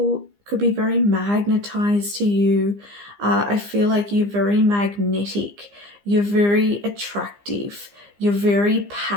could be very magnetized to you. I feel like you're very magnetic. You're very attractive. You're very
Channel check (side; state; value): left; late; 15 ms